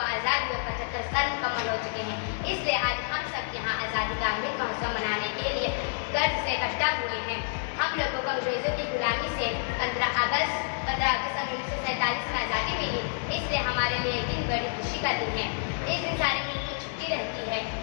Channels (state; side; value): silent; right; digital silence